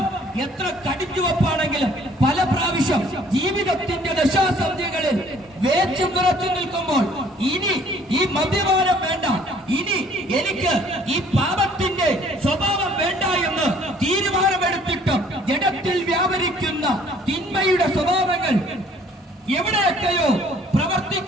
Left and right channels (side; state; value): both; normal; correlation 0.58